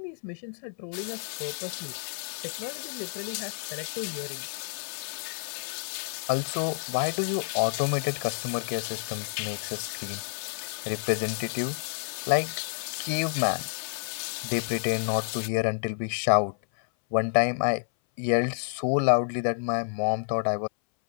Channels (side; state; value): right; silent; 58 dB below the other